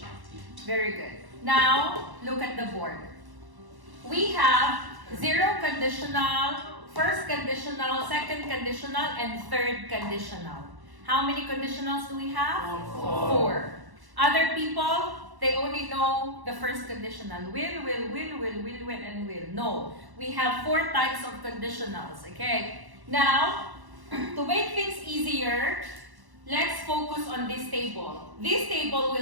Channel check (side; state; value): left; late; 1.1 ms